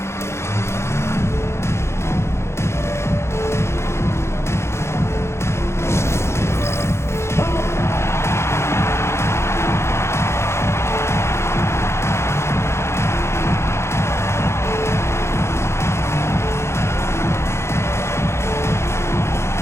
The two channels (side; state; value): right; late; 0.13 ms